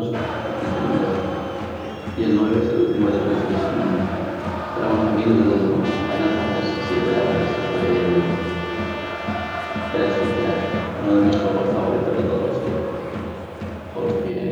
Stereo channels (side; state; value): both; identical; correlation 1.00